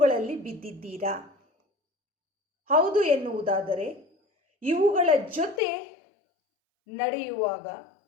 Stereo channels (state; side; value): drops out; right; at 5.6 s